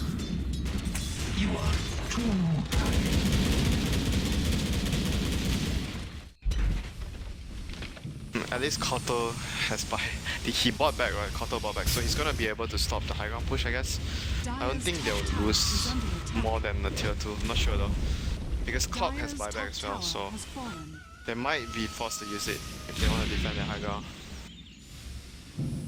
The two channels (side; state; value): both; identical; correlation 1.00